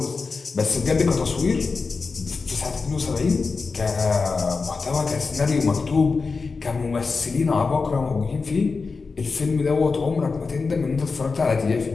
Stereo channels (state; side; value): quieter; right; 4.5 dB